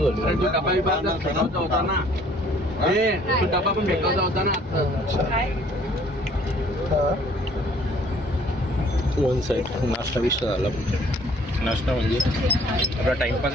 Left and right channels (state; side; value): normal; both; correlation 0.58